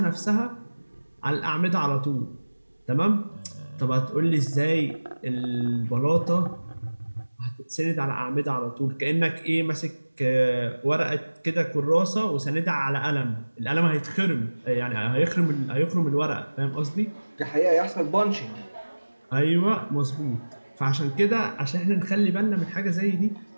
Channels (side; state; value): both; inverted; correlation -1.00